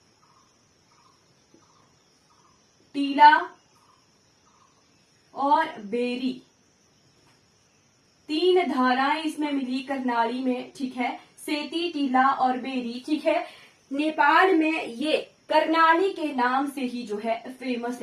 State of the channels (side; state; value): both; identical; correlation 1.00